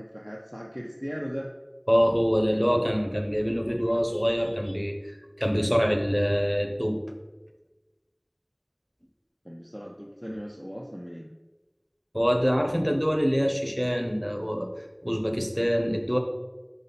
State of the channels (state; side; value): identical; both; correlation 1.00